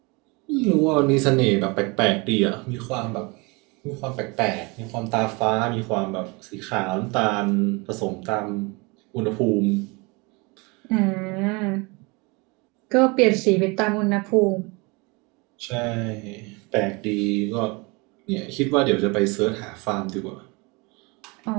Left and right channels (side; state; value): left; quieter; 27.7 dB